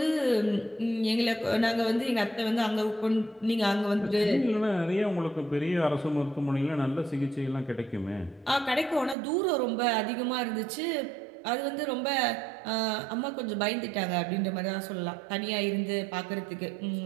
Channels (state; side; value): drops out; left; at 9.2 s